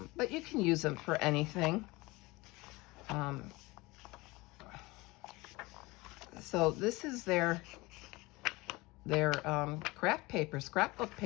but you can use them for anything. So this is their craft paper, scrapbook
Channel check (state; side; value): quieter; right; 22.3 dB